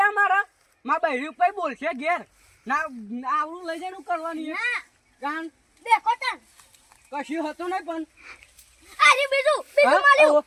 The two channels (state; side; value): identical; both; correlation 1.00